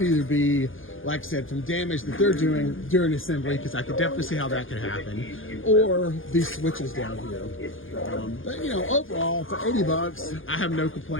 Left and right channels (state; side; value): late; right; 0.58 ms